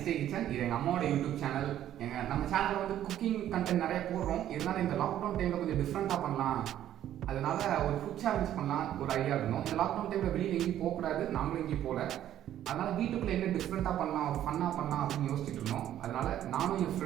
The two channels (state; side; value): quieter; left; 11.7 dB